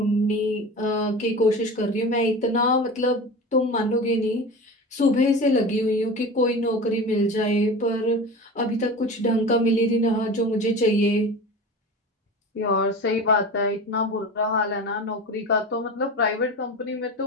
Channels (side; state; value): both; normal; correlation 0.31